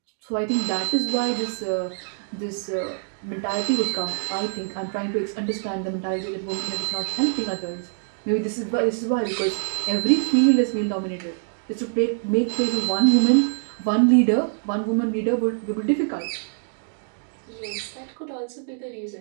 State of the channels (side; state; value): left; silent; digital silence